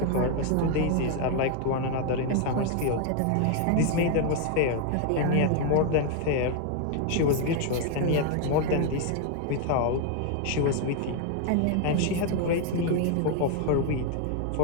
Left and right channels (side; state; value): both; different; correlation 0.01